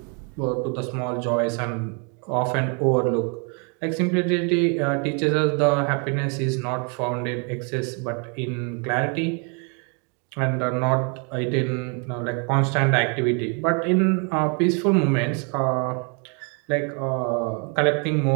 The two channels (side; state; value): left; quieter; 36.6 dB